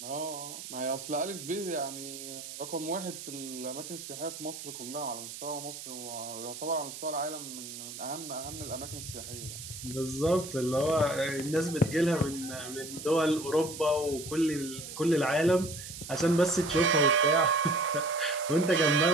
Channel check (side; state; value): right; noise; hiss, 10 dB below the sound